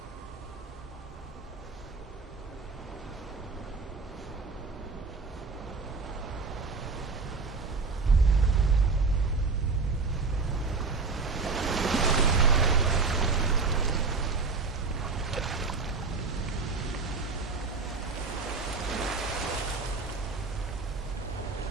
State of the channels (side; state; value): left; quieter; 4.3 dB